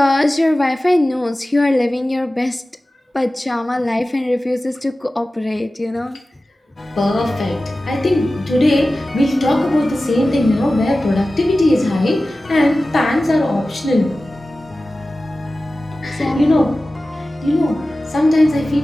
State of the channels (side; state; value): both; normal; correlation 0.95